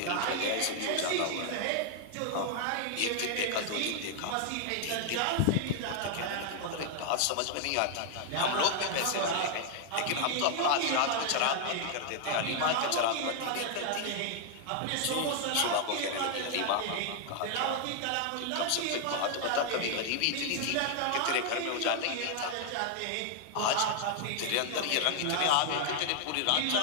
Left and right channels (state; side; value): different; both; correlation 0.00